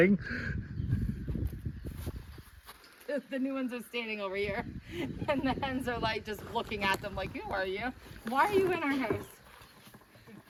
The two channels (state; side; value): identical; both; correlation 1.00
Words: The new ones are standing over here, and the hens are like just looking at them like, who are you? Why are you in our house?